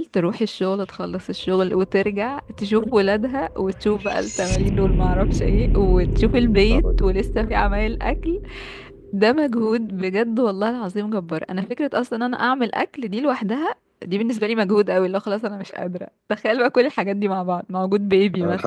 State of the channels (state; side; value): identical; both; correlation 1.00